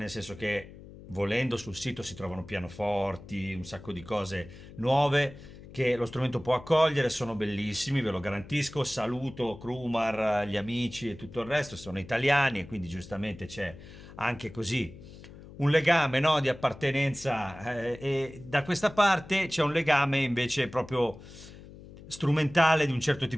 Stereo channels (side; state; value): left; noise; hum, 17 dB below the sound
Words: senso che volendo sul sito si trovano pianoforti, un sacco di cose nuove che lo strumento può accogliere, sono bellissimi, ve lo garantisco. Saluto Crumar, gli amici e tutto il resto, sono italiani e quindi giustamente c'è anche così un legame, no, di appartenenza, e da questa parte c'è un legame invece proprio strumentale di un certo